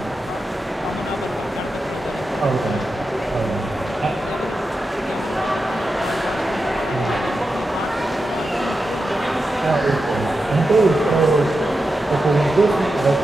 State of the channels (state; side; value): normal; both; correlation 0.90